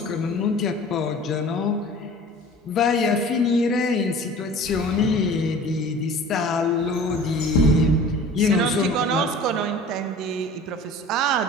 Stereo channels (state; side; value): normal; both; correlation 0.42